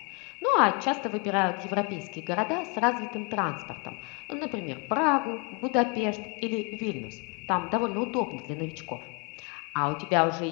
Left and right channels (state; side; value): quieter; right; 33.7 dB